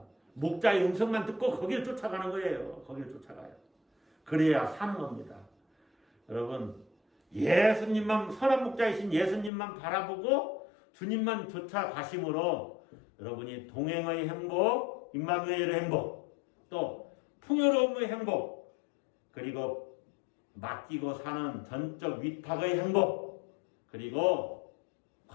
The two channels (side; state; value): right; drops out; at 9.5 s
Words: 목자의 음성만 듣고 거기를 쫓아가는 거예요. 거기를 쫓아가요. 그래야 사는 겁니다. 여러분, 예수님만, 선한 목자이신 예수님만 바라보고 주님만 쫓아가심으로 여러분이 동행의 행복, 임마누엘의 행복, 또 풍요로움의 행복, 그리고 맡기고 사는 전적 위탁의 행복, 그리고